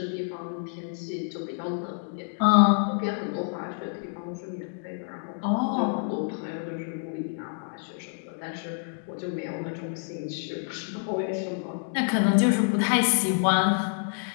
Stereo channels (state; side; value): silent; right; 59 dB below the other